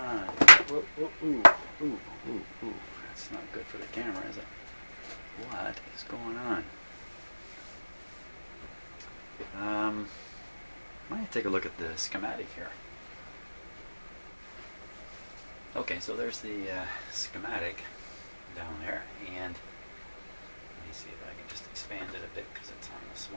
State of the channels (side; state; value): both; inverted; correlation -1.00